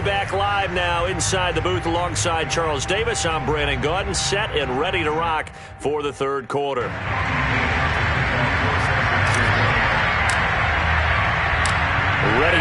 back live now inside the booth alongside Charles Davis. I'm Brandon Gaudin, set and ready to rock for the third quarter.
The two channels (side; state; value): both; identical; correlation 1.00